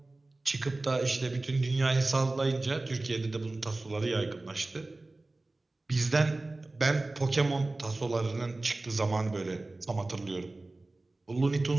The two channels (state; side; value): quieter; left; 3.0 dB